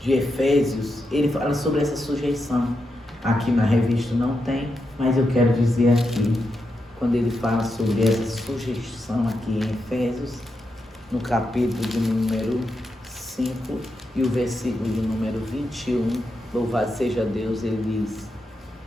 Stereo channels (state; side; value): normal; both; correlation 0.86